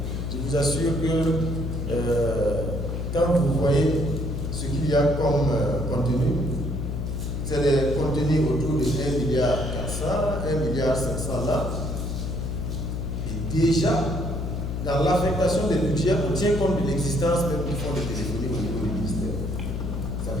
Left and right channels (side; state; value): left; noise; hum, 3 dB below the sound